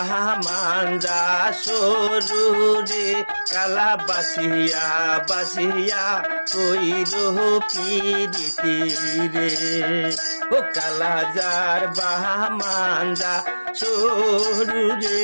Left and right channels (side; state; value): both; inverted; correlation -1.00